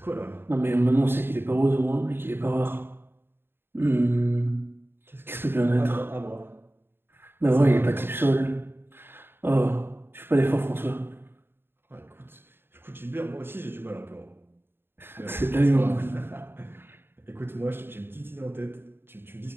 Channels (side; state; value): left; late; 0.11 ms